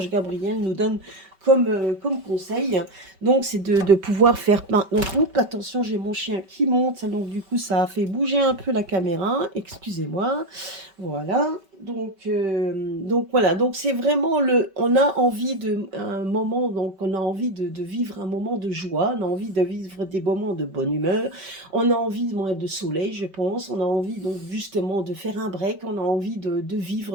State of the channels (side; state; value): left; late; 5.2 ms